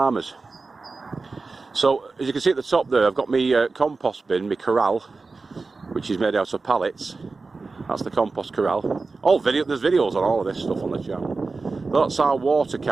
So as you can see at the top there, I've got my compost bin, my corral, which is made out of pallets. That's the compost corral. There's videos on all of this stuff on the channel. That's our water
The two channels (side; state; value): left; quieter; 3.9 dB